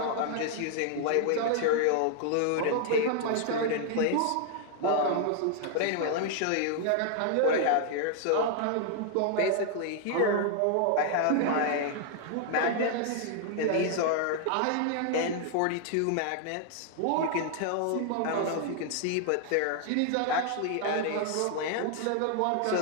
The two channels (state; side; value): different; both; correlation 0.00